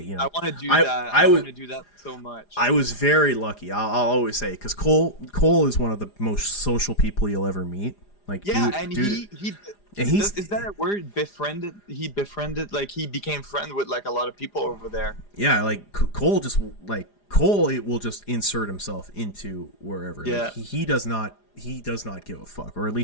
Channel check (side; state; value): right; late; 4.9 ms